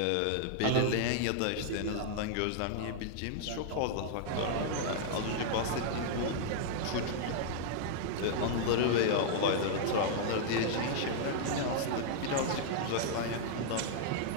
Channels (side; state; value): both; different; correlation -0.01